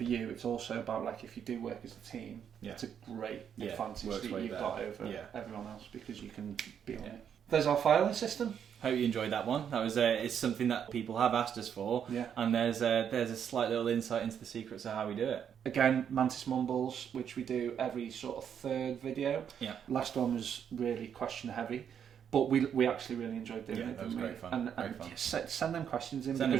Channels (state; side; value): quieter; left; 8.3 dB